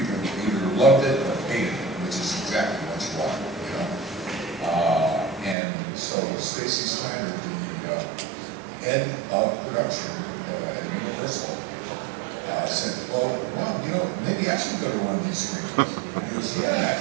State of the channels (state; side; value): drops out; left; at 5.6 s